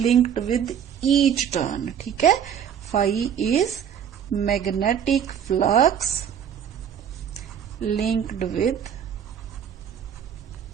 with each turn. ਠੀਕ ਹੈ, phi is magnetic flux linked with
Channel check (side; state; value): left; quieter; 8.5 dB